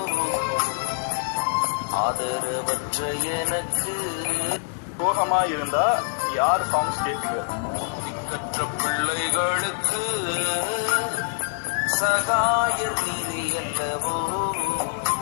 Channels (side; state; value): right; silent; digital silence